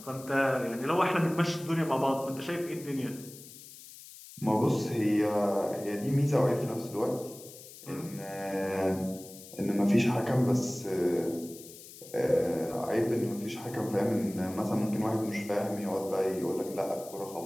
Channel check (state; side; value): noise; left; hiss, 17 dB below the sound